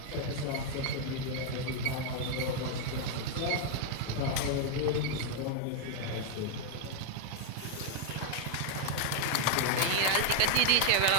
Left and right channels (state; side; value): different; both; correlation 0.00